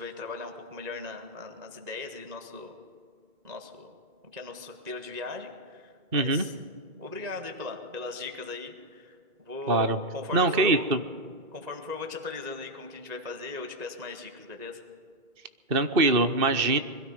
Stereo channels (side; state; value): left; late; 1.9 ms